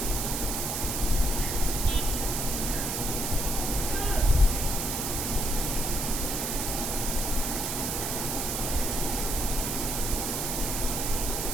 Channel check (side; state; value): right; noise; hiss, 1 dB below the sound